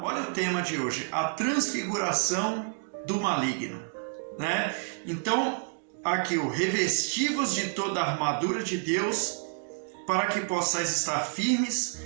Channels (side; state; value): left; silent; 58 dB below the other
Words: Olha o tema de hoje, a transfiguração do maligno, né? Então, aqui o revestivos de toda a armadura de Deus, para que possais estar firmes